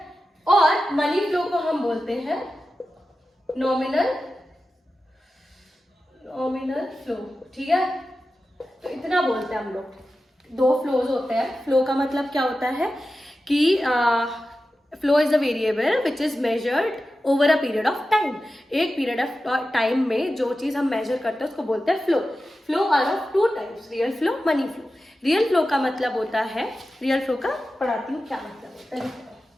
और मनी फ्लो को हम बोलते हैं नॉमिनल फ्लो, ठीक है. तो इतना बोलते हैं हम लोग. दो फ्लोज होते हैं. फ्लो का मतलब क्या होता है कि flow is a variable which is measured over a period of time. एक पीरियड ऑफ टाइम में जो चीज हम मेजर करते हैं उसको बोलते हैं flow. Flow are of two types, real flow, money flow. Real flow का मतलब होता है, रियल फ्लो का पढ़ाती हूँ क्या मतलब होता है.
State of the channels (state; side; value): normal; both; correlation 0.93